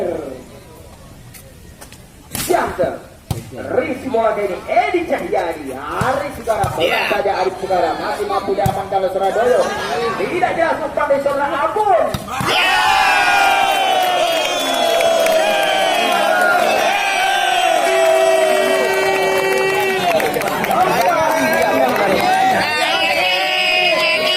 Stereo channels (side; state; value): both; identical; correlation 1.00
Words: Yang Rizky bola kali ini Edi Cahyadi. Arif Sugara bola saja Arif Sugara masih mampu diaman kalau Surabaya. Tidak jelas pandai seorang Abun.